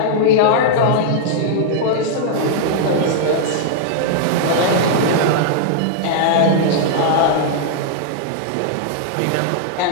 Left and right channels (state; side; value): different; both; correlation -0.01